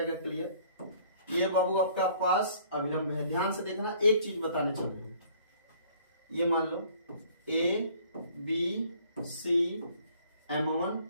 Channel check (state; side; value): inverted; both; correlation -0.57